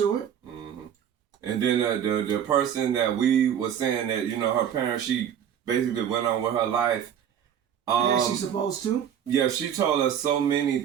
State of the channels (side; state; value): left; quieter; 9.1 dB